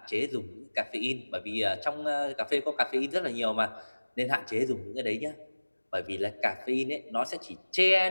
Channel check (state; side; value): inverted; both; correlation -1.00